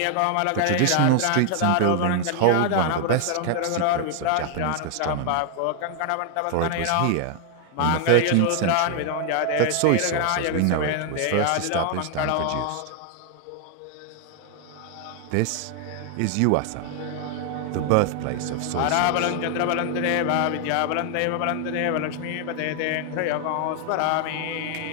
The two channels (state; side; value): different; both; correlation 0.00